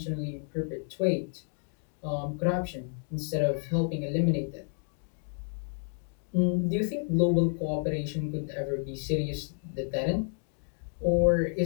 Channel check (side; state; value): right; silent; 57 dB below the other